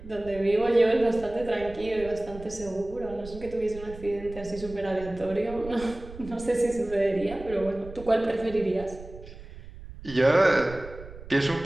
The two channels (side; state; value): right; noise; rumble, 15 dB below the sound